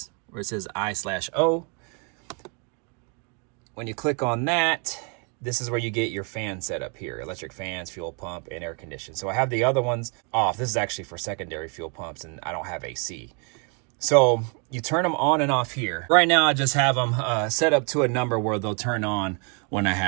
where it says I/O, when you click on that, this is where you get your fan setup here: electric fans, fuel pump, and air condition. So I have the other ones off. This is actually for secondary fuel pumps, and I don't have AC. So you turn them on and off here. Right now, I just have them set up to a number where they'll turn on when I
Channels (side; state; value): left; quieter; 36.6 dB